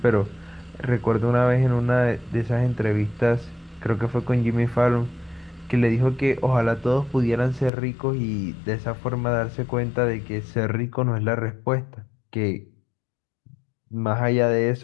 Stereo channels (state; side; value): drops out; right; at 7.7 s